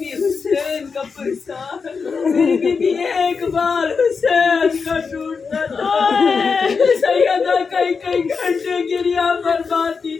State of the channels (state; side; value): quieter; right; 5.2 dB